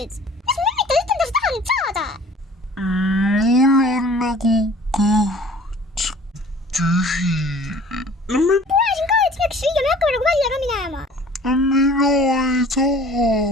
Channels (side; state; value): both; normal; correlation 0.48